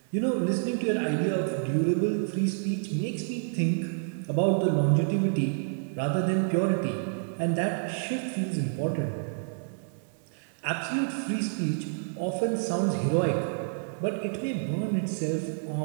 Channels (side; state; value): left; silent; digital silence